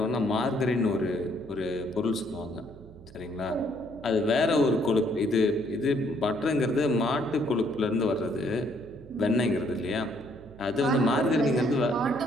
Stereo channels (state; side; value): noise; right; hum, 20 dB below the sound